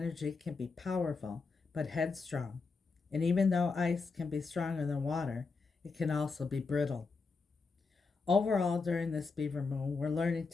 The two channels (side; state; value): right; quieter; 4.4 dB